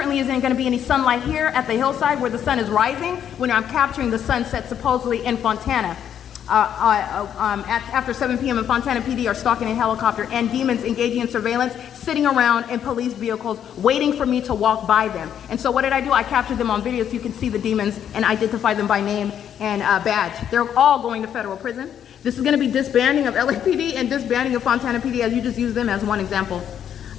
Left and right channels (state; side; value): quieter; right; 9.3 dB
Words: isn't going to be any sunlight here at the hillside where the sun is rising when I'm capturing the sunset supposedly in Fontana. After 7 p.m. in Fontana PD are stalking a helicopter and demons engaging in surveillance, sitting around in police vehicles waiting for me to walk by them. And so what did I do? I captured them on video so you can see the demons and identify them by name and badge. They're all going to federal prison. This is going to be disbanding of LAPD and disbanding of Fontana PD, as you just used them as one example.